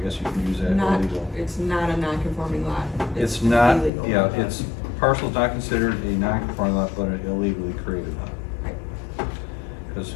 guess you can use that illegal. It's not a non-conforming lot. It's an not, illegal yeah, lot. it's, parcel's not considered a non-conforming lot, but an illegally created lot. Right. Cause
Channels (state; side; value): drops out; right; at 3.9 s